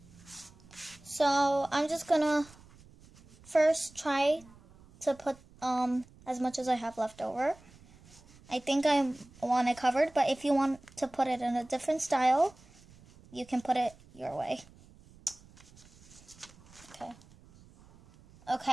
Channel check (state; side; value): noise; right; rumble, 24 dB below the sound